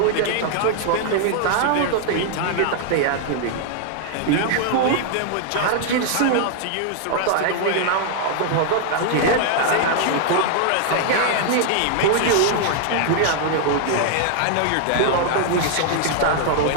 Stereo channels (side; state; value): both; different; correlation 0.00